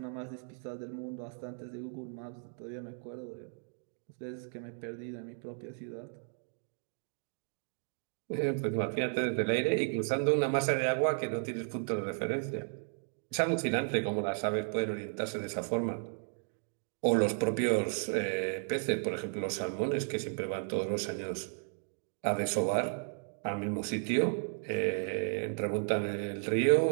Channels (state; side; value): silent; left; digital silence